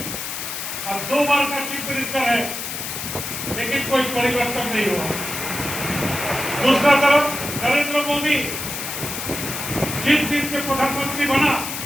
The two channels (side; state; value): left; noise; hiss, 5 dB below the sound